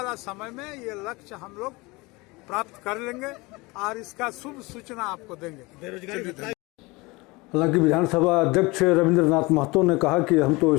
समय में ये लक्ष्य हम लोग प्राप्त कर लेंगे और इसका शुभ सूचना आपको देंगे। हालांकि विधानसभा अध्यक्ष रविंद्रनाथ महतो ने कहा कि हम तो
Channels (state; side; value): quieter; right; 24.1 dB